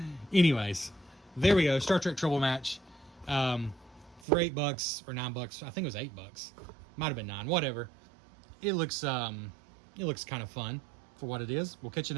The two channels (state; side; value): drops out; left; at 4.2 s